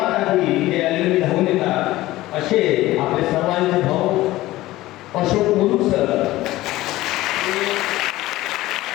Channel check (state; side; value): quieter; right; 17.1 dB